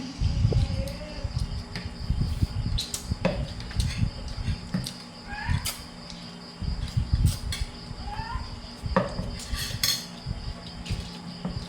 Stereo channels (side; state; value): both; identical; correlation 1.00